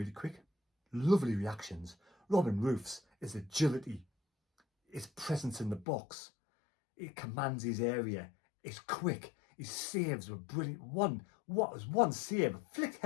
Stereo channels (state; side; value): drops out; right; at 5.9 s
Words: quick. Lovely reactions. Robin Roofs, his agility, his presence in the box. He commands his area. He's quick. His saves were brilliant. One save, a flick